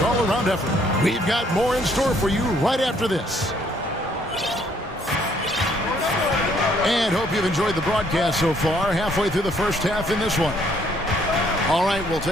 all-around effort. We've got more in store for you right after this. And hope you've enjoyed the broadcast so far, halfway through the first half in this one. All right, we'll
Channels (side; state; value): both; normal; correlation 0.66